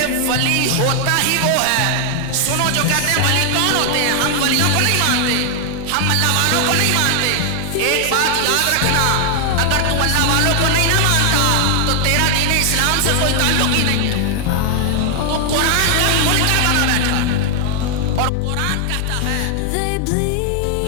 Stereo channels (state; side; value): different; both; correlation 0.00